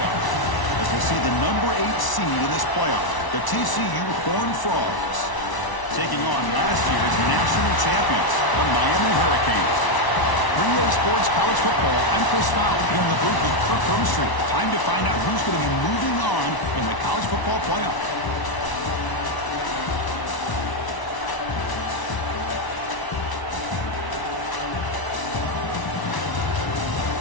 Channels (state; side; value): late; right; 1.0 ms